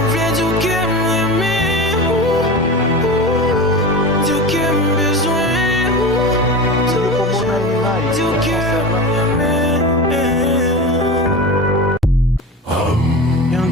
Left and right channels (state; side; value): normal; both; correlation 0.28